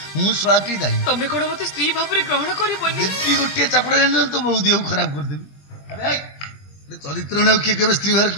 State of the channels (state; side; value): late; right; 21 ms